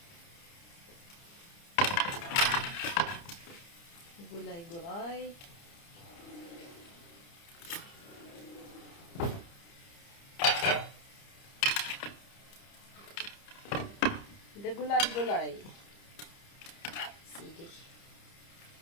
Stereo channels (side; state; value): right; late; 30 ms